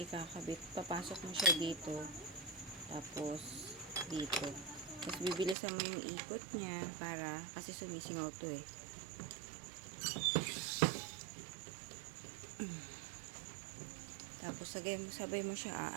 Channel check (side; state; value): left; drops out; at 5.6 s